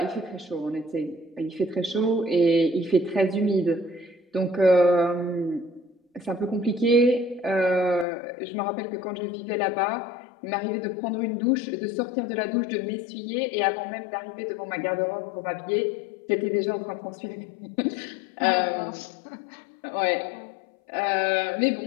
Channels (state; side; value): drops out; right; at 8.1 s